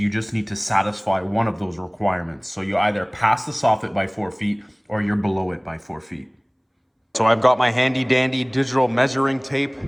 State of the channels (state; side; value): identical; both; correlation 1.00